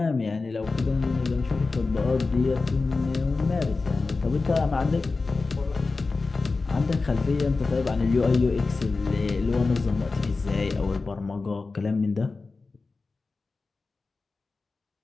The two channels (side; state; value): right; quieter; 3.9 dB